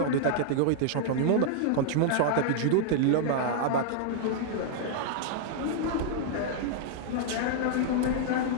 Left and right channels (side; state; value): both; different; correlation -0.01